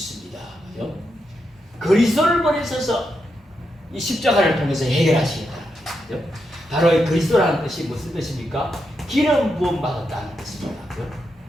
그리스도를 보내셔서 이 십자가를 통해서 해결하시겠다는 거예요. 바로 이 그리스도라는 뜻이 무슨 뜻입니까? 기름 부음 받았다는 뜻입니다.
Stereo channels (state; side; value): normal; both; correlation 0.84